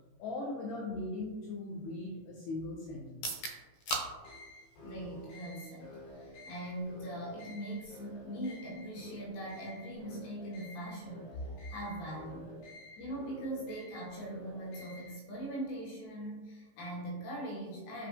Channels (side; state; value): right; late; 18 ms